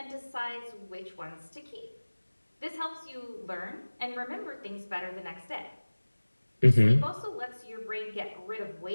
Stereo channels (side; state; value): both; inverted; correlation -1.00